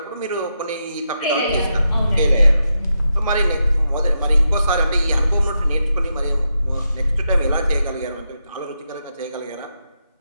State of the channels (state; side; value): inverted; both; correlation -0.84